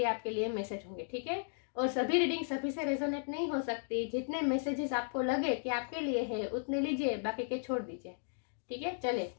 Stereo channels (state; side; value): silent; right; digital silence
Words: आपके लिए मैसेज होंगे, ठीक है। और सभी रीडिंग सभी से रेजोनेट नहीं हो सकती। जितने मैसेजेस आपको लगे कि आपके लिए है उतने लीजिए, बाकी के छोड़ दीजिए, ठीक है। चले